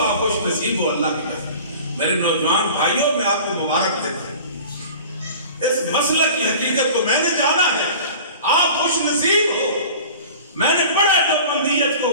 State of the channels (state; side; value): inverted; both; correlation -0.41